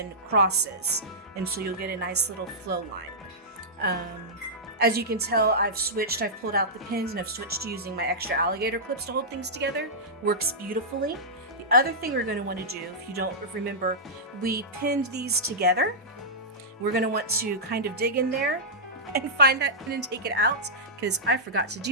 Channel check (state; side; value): normal; both; correlation -0.12